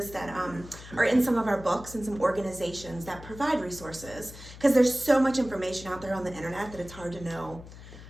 that are in some of our books and some organizations that provide resources, because there's so much information out there on the internet that it's hard to know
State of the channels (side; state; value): left; noise; hum, 16 dB below the sound